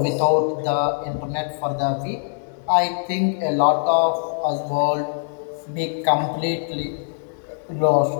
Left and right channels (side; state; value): right; silent; digital silence